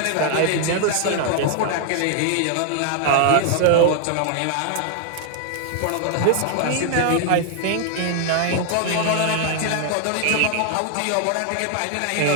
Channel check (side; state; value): both; different; correlation 0.00